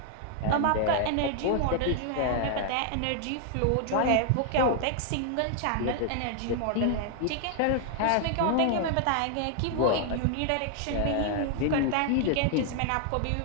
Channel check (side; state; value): both; different; correlation 0.00